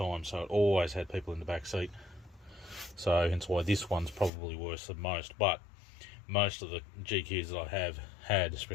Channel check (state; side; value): drops out; right; at 4.3 s